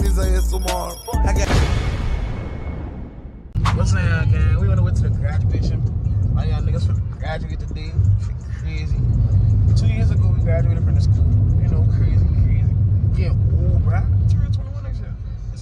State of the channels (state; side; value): identical; both; correlation 1.00